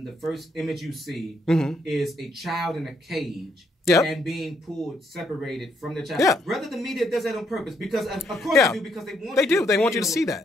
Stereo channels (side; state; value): both; normal; correlation 0.73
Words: the first image you see is a child in a cage. Yep. And being separated from the child. Yeah. Rather, the media does that on purpose, because of course they do, because they want you to see